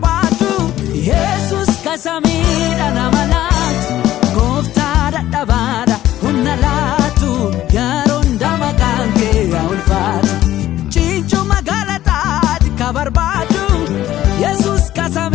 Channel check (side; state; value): right; quieter; 13.6 dB